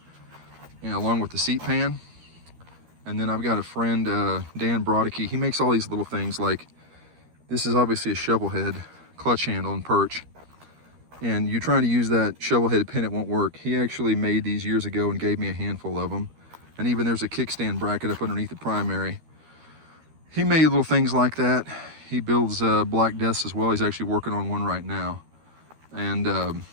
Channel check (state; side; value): late; left; 13 ms